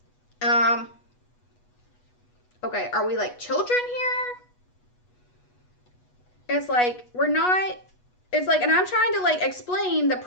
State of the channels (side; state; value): right; late; 8.2 ms